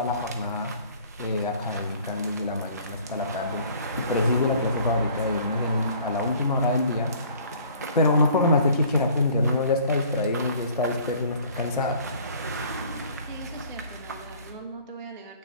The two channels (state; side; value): inverted; both; correlation -0.53